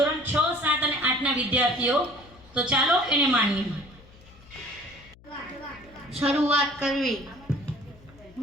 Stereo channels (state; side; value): noise; left; hum, 24 dB below the sound